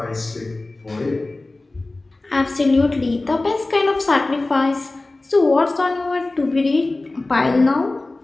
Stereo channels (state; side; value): quieter; right; 3.0 dB